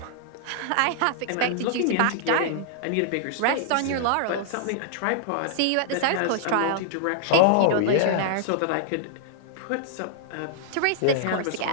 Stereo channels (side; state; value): both; different; correlation -0.01